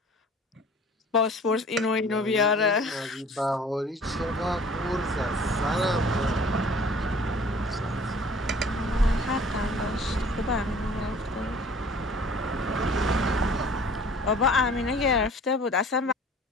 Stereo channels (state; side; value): normal; both; correlation 0.49